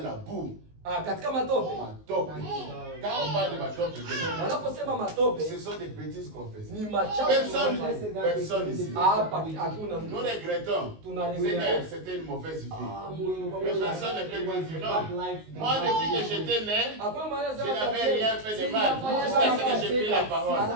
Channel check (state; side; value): late; left; 19 ms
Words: la boue. Katika matope. Matope. Quand on parle de matope, wanaposema matope, ce sont des bêtises qu'on fait. Ni machafu. Personne ici. Hapa hakuna mtu. Nous regrettons. C'était une mauvaise vie. Mais personne ne peut dire non. Moi, depuis que j'étais né, je n'avais rien fait de mal. Jusqu'à ce que j'ai pris la parole.